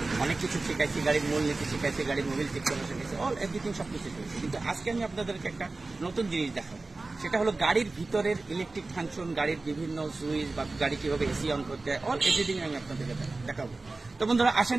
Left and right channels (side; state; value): left; quieter; 3.4 dB